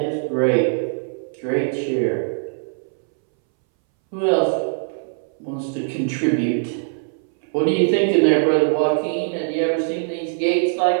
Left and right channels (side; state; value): left; silent; 63 dB below the other